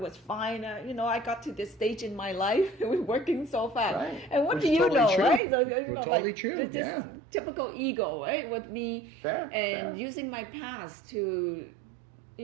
fine. I got to this stage in my life with working so fast. Right. And what Which do is you totally know, true. right? So, Totally true. Just typical ego, right, with me, and using my past to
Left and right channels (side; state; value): left; drops out; at 5.4 s